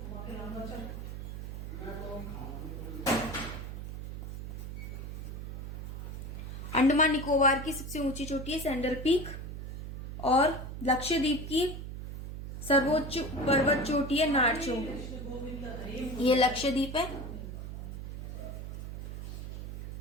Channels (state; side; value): noise; right; hum, 7 dB below the sound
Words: अंडमान निकोबार की सबसे ऊंची चोटी है सैंडल पीक। और लक्षद्वीप की सर्वोच्च पर्वत चोटी है नारचो। ये लक्षद्वीप है,